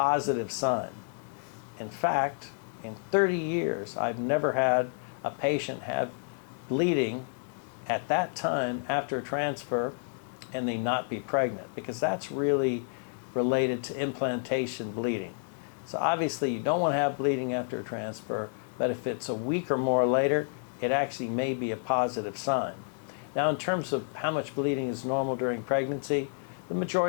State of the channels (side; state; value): right; silent; digital silence